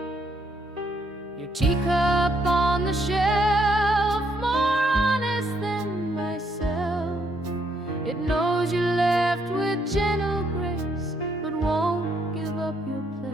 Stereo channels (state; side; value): normal; both; correlation 0.73